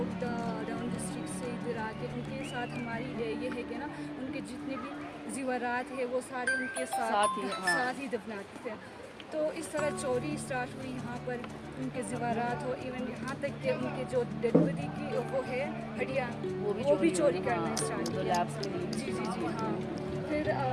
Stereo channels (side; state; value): both; identical; correlation 1.00